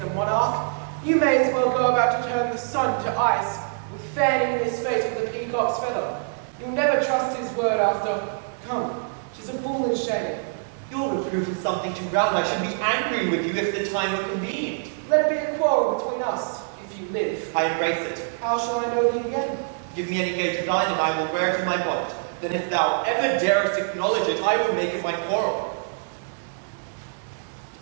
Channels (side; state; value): left; silent; digital silence